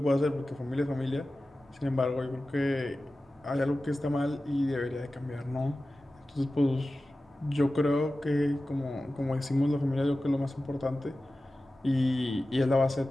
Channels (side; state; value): both; normal; correlation 0.95